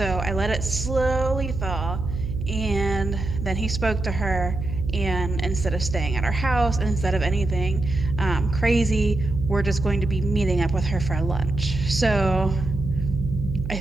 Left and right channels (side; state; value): right; noise; hum, 5 dB below the sound